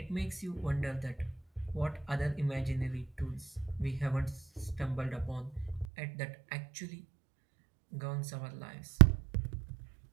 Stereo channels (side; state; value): left; drops out; at 5.9 s